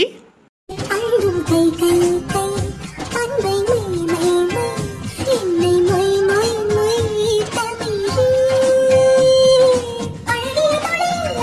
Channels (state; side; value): identical; both; correlation 1.00